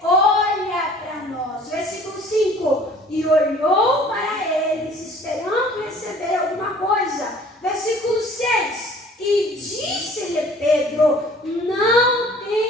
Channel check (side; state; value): both; normal; correlation 0.51